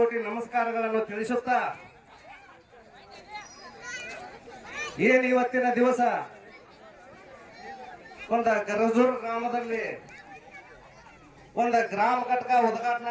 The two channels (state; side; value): identical; both; correlation 1.00